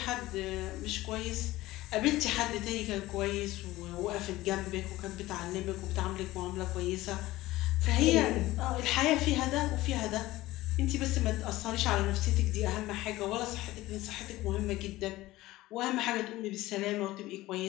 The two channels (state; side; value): quieter; right; 17.6 dB